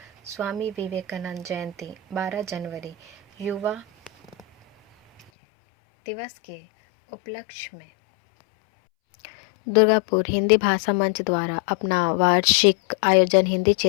स्वामी विवेकानंद जयंती 12 जनवरी युवा दिवस के उपलक्ष्य में दुर्गापुर हिंदी भाषा मंच द्वारा अपना वार्षिक आयोजन हिंदी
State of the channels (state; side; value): drops out; right; at 5.2 s